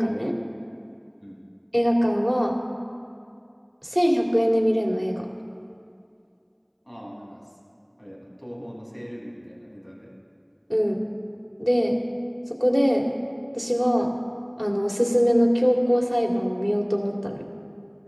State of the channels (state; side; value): identical; both; correlation 1.00